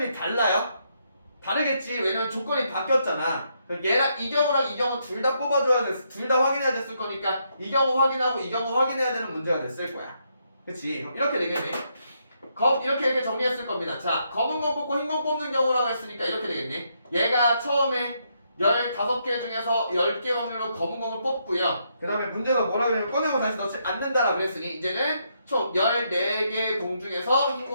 달라요. 다르겠지. 왜냐면 조건이 바뀌었잖아. 얘랑 이 경우랑 이 경우 둘 다 뽑아줘야 됐, 둘 다 확인해야 됐을 거니까 이 경우 확인하고 이 경우 확인해야 되는 문제가 됐을 거야. 그치? 이렇게 되겠네. 이렇게 정리했을 겁니다. 자, 검은 공 뽑고 흰 공 뽑는 경우라고 했으니까 이렇게 되겠네. 얘가 처음에 15개 중에서 10개 확률로 검은 공을 뽑고요. 그 다음에 문제가 뭐라 그러냐면 꺼내고 다시 넣지 않는다라고 그랬으니 이제는 총 14개 공 중에서 흰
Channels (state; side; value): inverted; both; correlation -0.77